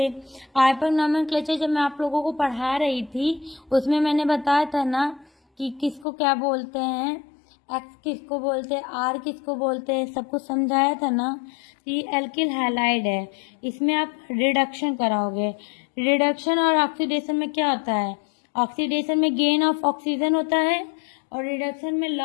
आइपक नोमेनक्लेचर जब मैं आप लोगों को पढ़ा रही थी उसमें मैंने बताया था ना कि किसको क्या बोलते हैं, एक्स किसको बोलते हैं, आर किसको बोलते हैं, सब कुछ समझाया था ना। ये एल्किल हैलाइड है, इसमें आप रिडक्शन कराओगे। रिडक्शन और ऑक्सीडेशन में क्या होता है, ऑक्सीडेशन में गेन ऑफ ऑक्सीजन होता है और रिडक्शन में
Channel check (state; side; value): drops out; right; at 6.1 s